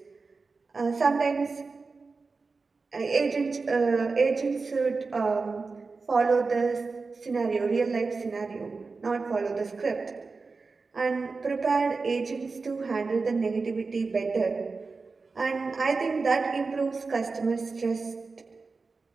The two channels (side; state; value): left; quieter; 4.2 dB